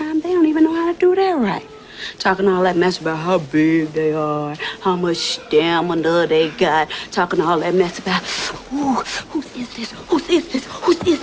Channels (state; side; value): identical; both; correlation 1.00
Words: they don't even know how to do that right. Talking all that mess about how big they are, how much stamina they got. Talking all that mess about, ooh, whose is this? Whose is this? Whose is